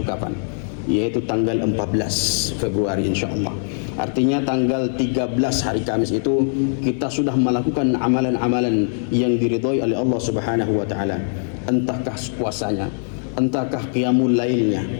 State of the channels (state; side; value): silent; right; digital silence